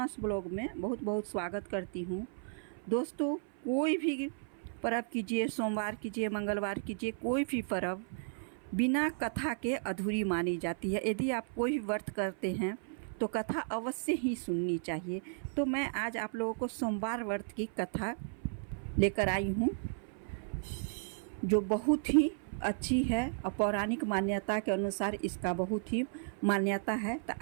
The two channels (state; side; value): silent; left; 55 dB below the other